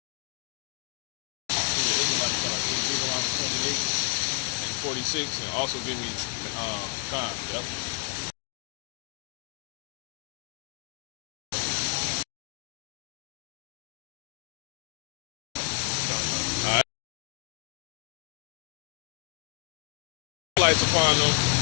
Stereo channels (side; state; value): right; quieter; 38.5 dB